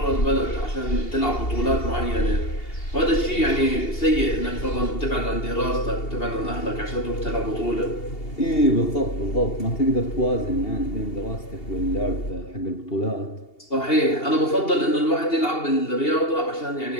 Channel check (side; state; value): right; late; 2.8 ms